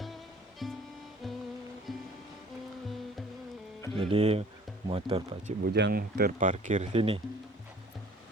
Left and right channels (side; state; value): both; normal; correlation 0.51